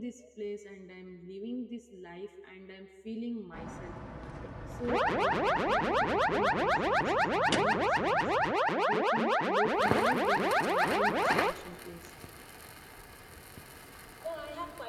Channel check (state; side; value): identical; both; correlation 1.00